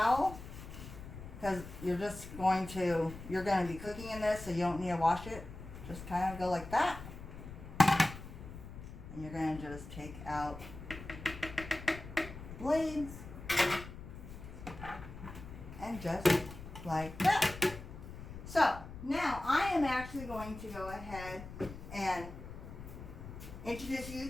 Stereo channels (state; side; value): noise; left; rumble, 12 dB below the sound